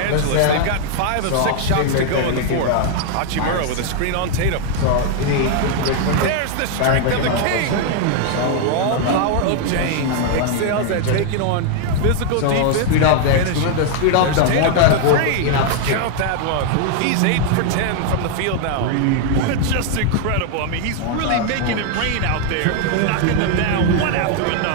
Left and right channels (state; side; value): different; both; correlation 0.00